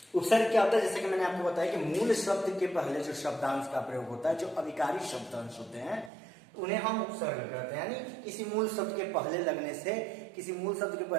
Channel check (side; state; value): left; drops out; at 6.1 s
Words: उपसर्ग क्या होता है, जैसे कि मैंने आपको बताया कि मूल शब्द के पहले जो शब्दांश का प्रयोग होता है, जो अविकारी शब्दांश होते हैं उन्हें हम उपसर्ग कहते हैं। यानी किसी मूल शब्द के पहले लगने से, किसी मूल शब्द के